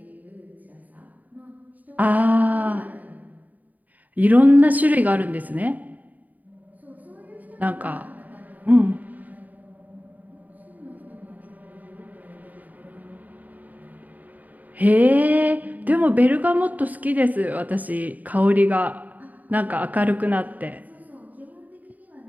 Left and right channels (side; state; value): left; late; 0.078 ms